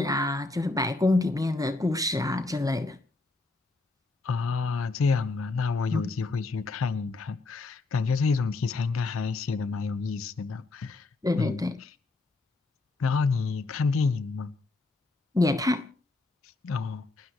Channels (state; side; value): quieter; right; 3.3 dB